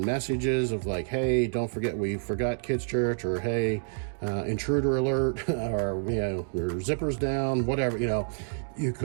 messages of like, hey, don't forget we forgot Kids Church, or hey, intruder alert, or your zipper's down, whatever. You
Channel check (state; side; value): silent; left; digital silence